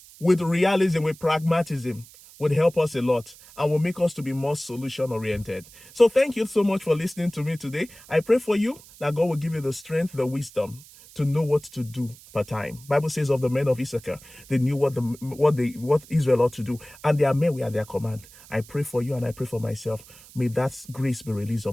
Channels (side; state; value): right; noise; hiss, 22 dB below the sound